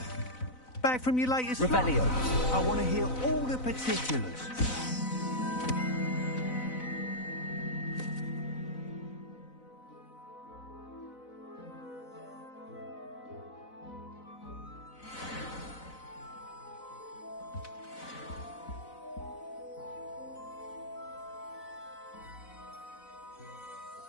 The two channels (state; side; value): late; right; 4.0 ms